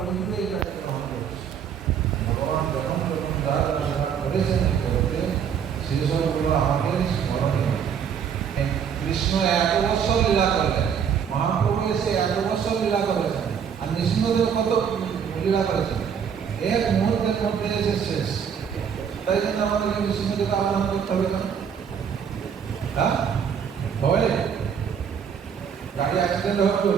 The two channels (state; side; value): quieter; left; 7.6 dB